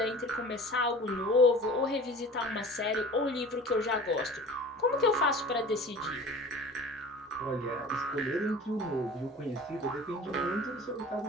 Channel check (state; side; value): normal; both; correlation 0.41